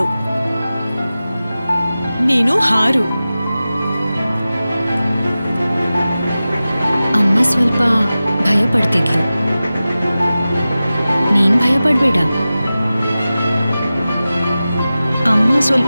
ನೀನು ಹಾರು. ಅಮ್ಮ ಸ್ವಲ್ಪ ಭಯ ಪಡ್ತಿದ್ಲು, ನೀನ್ ಭಯ ಪಡ್ಬೇಡ. ಅಮ್ಮ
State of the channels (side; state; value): both; inverted; correlation -0.95